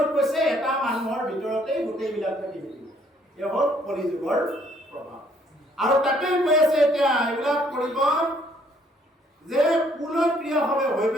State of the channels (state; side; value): normal; both; correlation 0.65